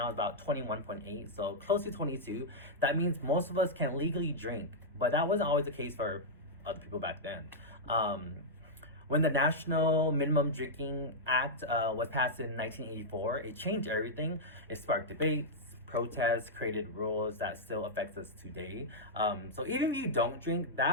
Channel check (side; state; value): both; normal; correlation -0.07